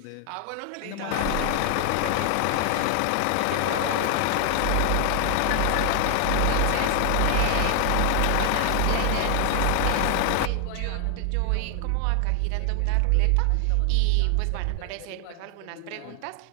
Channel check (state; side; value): different; both; correlation 0.00